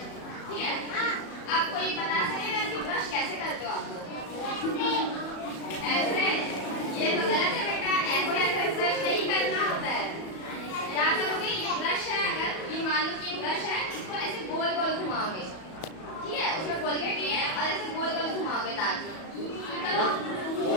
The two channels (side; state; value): right; late; 37 ms